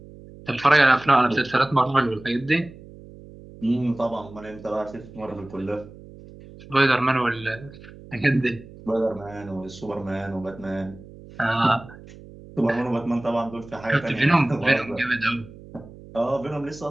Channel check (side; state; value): right; noise; hum, 19 dB below the sound